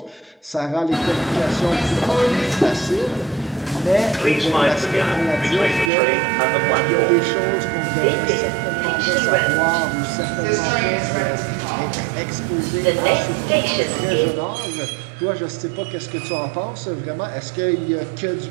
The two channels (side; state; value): left; drops out; at 5.9 s